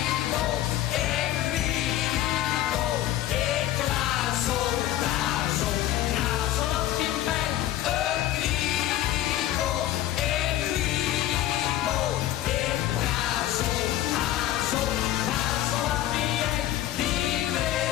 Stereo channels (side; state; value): right; quieter; 13.6 dB